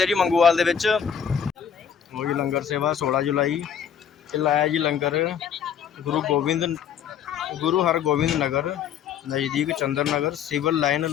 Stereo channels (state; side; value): quieter; right; 8.1 dB